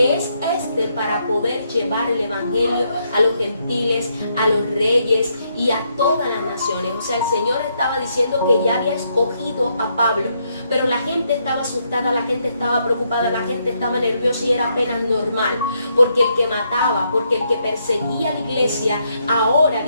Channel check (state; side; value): inverted; both; correlation -0.76